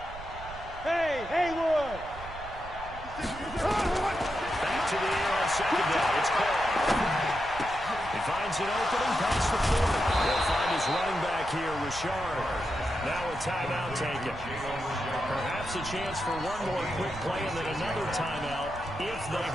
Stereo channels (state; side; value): noise; right; rumble, 14 dB below the sound